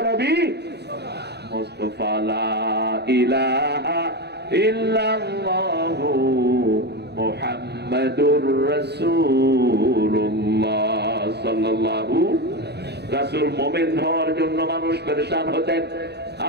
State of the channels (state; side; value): late; left; 0.48 ms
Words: মুস্তাফা। লা ইলাহা ইল্লাল্লাহু মুহাম্মাদুর রাসূলুল্লাহ সাল্লাল্লাহু। রাসূল মুমিন হওয়ার জন্য মানুষ পেরেশান হতেন।